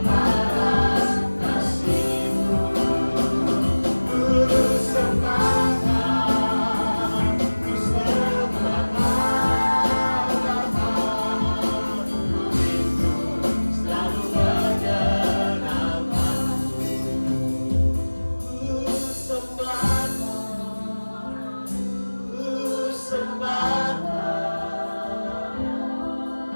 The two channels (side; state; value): both; inverted; correlation -1.00